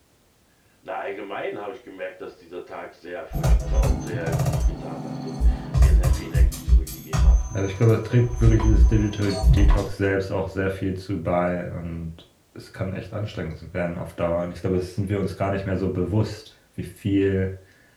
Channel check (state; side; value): identical; both; correlation 1.00